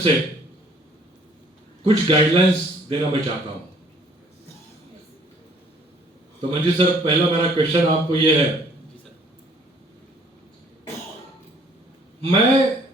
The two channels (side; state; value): both; normal; correlation 0.59